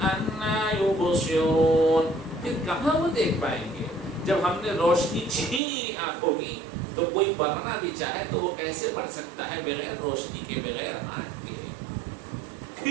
يُبْصِرُونَ، پھر کہاں وہ دیکھ پائیں گے، جب ہم نے روشنی چھین لی آنکھوں کی، تو کوئی پڑھنا بھی چاہے تو وہ کیسے پڑھ سکتا ہے بغیر روشنی کے، بغیر آنکھ کے۔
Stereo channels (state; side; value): drops out; left; at 5.6 s